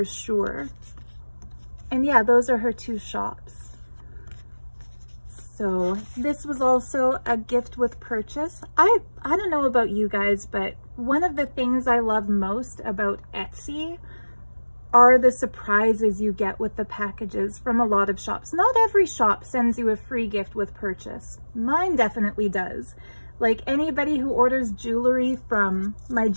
sure. And yeah, those are her two shops. So this was also a gift with purchase. I don't know about you guys, but one of the things I love most about Etsy are the surprises you get with the packages from a lot of shops. Not every shop sends you a free gift with purchase. Mine definitely does. Like anybody who orders jewelry from my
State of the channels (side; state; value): both; inverted; correlation -1.00